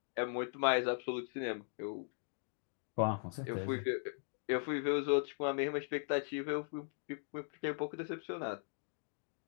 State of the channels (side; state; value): right; silent; digital silence